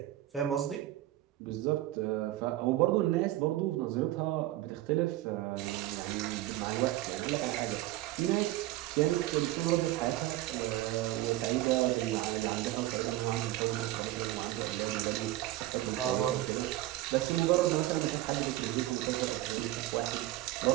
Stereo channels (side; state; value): left; quieter; 15.8 dB